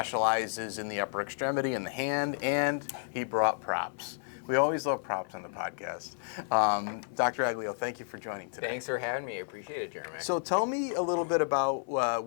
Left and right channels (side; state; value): right; silent; 57 dB below the other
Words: in the upper extremity and the hand, and he brought props. We always love props on the podcast. Dr. Aglio, thank you for joining today. Thanks for having me. I appreciate it, Jeremy. So tell me a little bit about